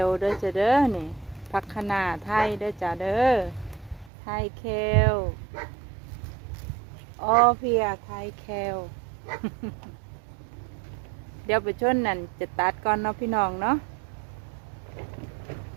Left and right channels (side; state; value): left; drops out; at 4.1 s